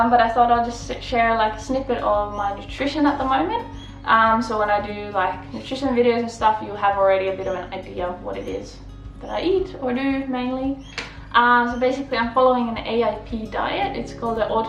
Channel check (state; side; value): identical; both; correlation 1.00